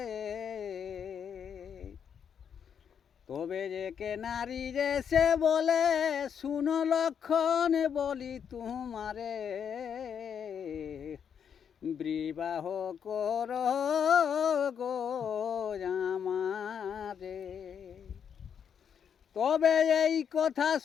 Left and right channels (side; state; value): right; quieter; 7.7 dB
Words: তবে যে কে নারী রে সে বলে শুনো লক্ষণ বলি তোমারে বিবাহ কর গো আমারে। তবে এই কথা